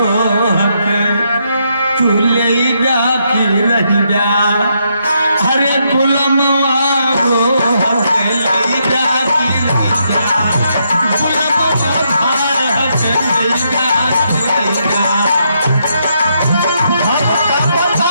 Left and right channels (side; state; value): both; inverted; correlation -0.78